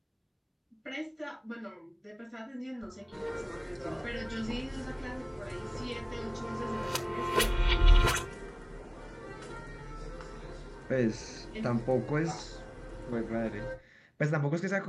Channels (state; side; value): identical; both; correlation 1.00